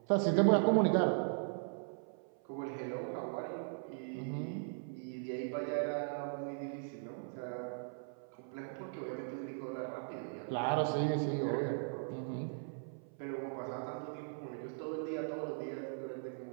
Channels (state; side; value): silent; left; 52 dB below the other